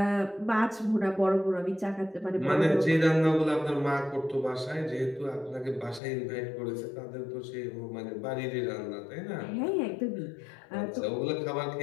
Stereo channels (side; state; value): right; drops out; at 6.0 s